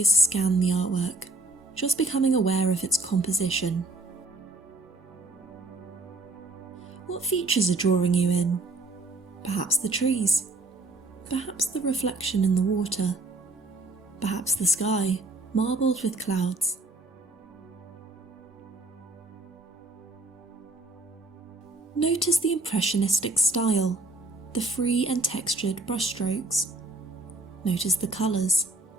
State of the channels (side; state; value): left; quieter; 3.1 dB